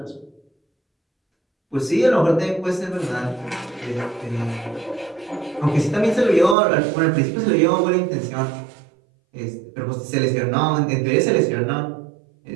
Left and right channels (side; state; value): left; drops out; at 6.6 s